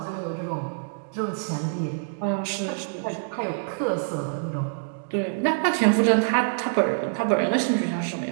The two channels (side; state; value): left; silent; 61 dB below the other